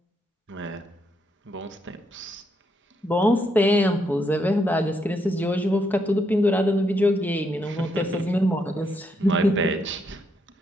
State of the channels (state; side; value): normal; both; correlation 0.77